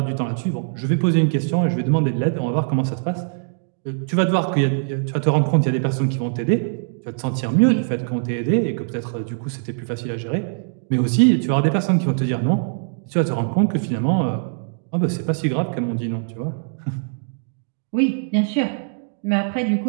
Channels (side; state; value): left; silent; digital silence